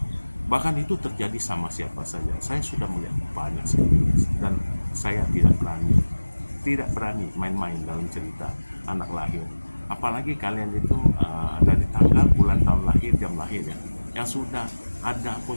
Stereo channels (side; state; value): both; inverted; correlation -1.00